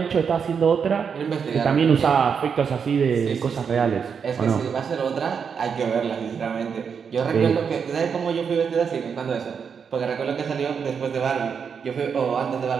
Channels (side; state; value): left; quieter; 6.6 dB